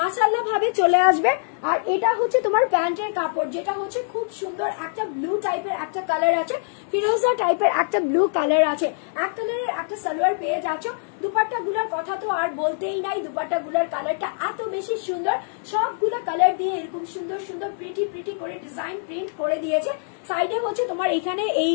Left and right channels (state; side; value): silent; right; digital silence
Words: ভাবে চলে আসবে। আর এটা হচ্ছে তোমার প্যান্টের কাপড়, যেটা হচ্ছে খুব সুন্দর একটা ব্লু টাইপের একটা কালার আছে, ফিরোজা টাইপের একটা ব্লু কালার আছে। এক কালারের একটা সালোয়ার পেয়ে যাচ্ছ। দুপাট্টা গুলার কথা তো আর বলতেই নাই, দুপাট্টা গুলার কালারটা এত বেশি সুন্দর। সবগুলো কালার দিয়ে এরকম সুন্দর সুন্দর প্রিটি প্রিটি করে ডিজাইন প্রিন্ট করে দিয়েছে। সাইডে হচ্ছে তোমার এখানে এই